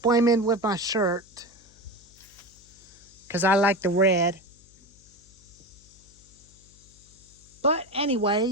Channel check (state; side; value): noise; left; hum, 27 dB below the sound